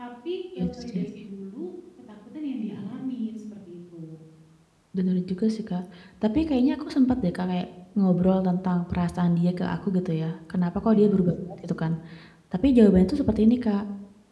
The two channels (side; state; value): both; identical; correlation 1.00